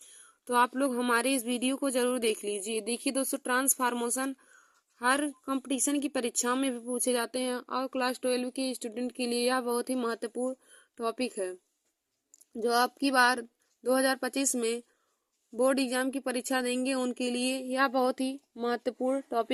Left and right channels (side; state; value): both; identical; correlation 1.00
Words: तो आप लोग हमारे इस वीडियो को जरूर देख लीजिए। देखिए दोस्तों, ट्रांसफॉर्मेशन हर कंपटीशन की परीक्षाओं में भी पूछे जाते हैं और क्लास 12 के स्टूडेंट के लिए यह बहुत ही महत्वपूर्ण टॉपिक है, जो आपकी बार 2025 में बोर्ड एग्जाम की परीक्षा देंगे उनके लिए यह बहुत ही महत्वपूर्ण